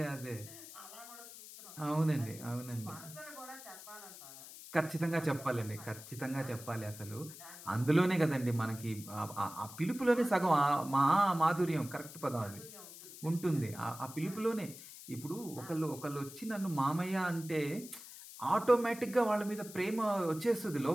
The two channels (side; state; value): left; noise; hiss, 15 dB below the sound